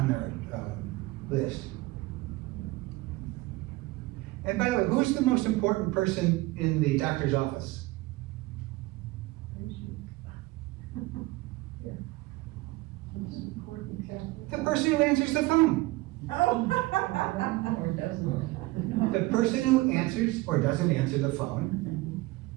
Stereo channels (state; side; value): quieter; left; 20.4 dB